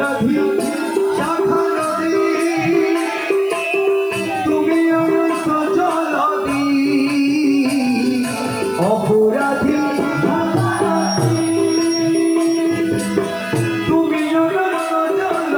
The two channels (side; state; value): right; noise; hiss, 27 dB below the sound